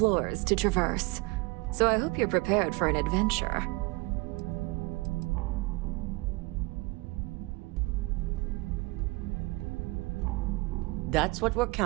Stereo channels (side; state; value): left; quieter; 24.4 dB